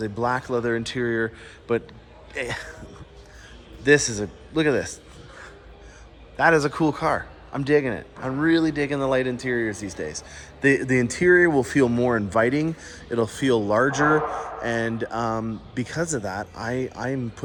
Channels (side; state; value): both; identical; correlation 1.00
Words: a black leather interior, but look at this. That is a cool car. I'm digging it. I'm really digging the light interiors these days. The interior will feel more inviting. It'll feel larger, and because of that, I'm